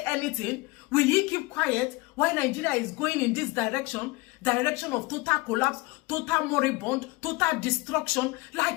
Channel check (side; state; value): right; quieter; 23.8 dB